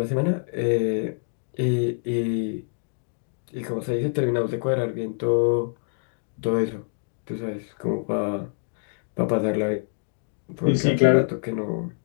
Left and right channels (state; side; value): silent; right; digital silence